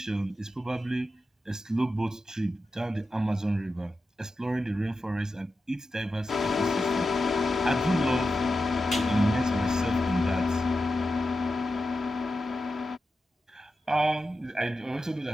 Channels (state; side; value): normal; both; correlation 0.90